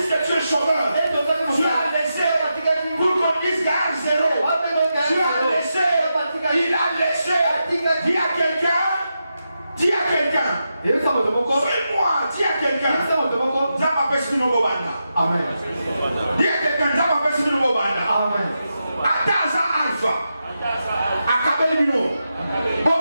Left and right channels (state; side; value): inverted; both; correlation -0.87